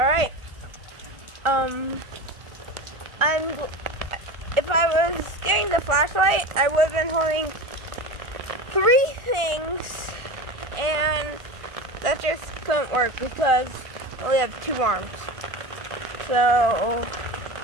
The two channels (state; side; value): late; left; 1.4 ms